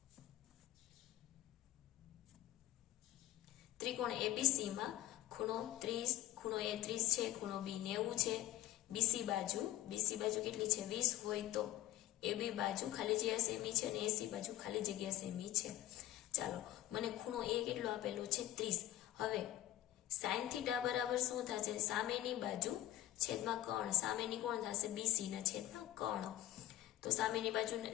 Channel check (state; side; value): quieter; right; 14.2 dB